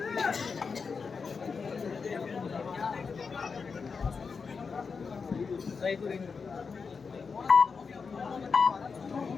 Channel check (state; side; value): quieter; right; 5.3 dB